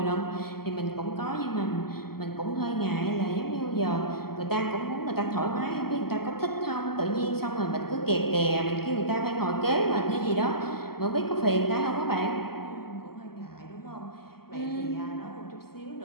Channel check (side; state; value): right; late; 0.95 ms